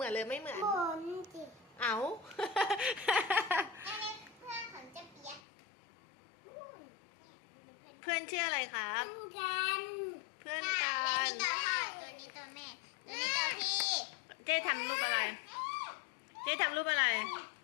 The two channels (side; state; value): right; drops out; at 5.4 s